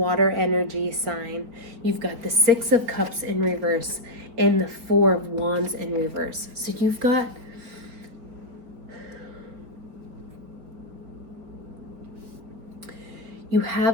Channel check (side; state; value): left; late; 4.4 ms